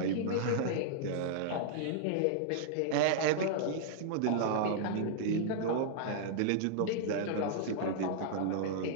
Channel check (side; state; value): both; different; correlation -0.01